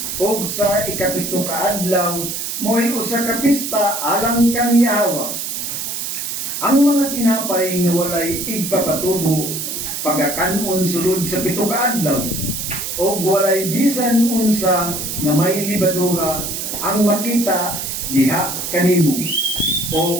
Og sa ika-7 ka adlaw mo'y usa ka pista alang kang Yahawa. Ang mga tinapay nga walay igpapatubo pagakanon sulod sa 7 ka adlaw. Og walay bisan unsa nga may libadura ang makita diha kanimo,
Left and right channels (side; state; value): right; noise; hiss, 4 dB below the sound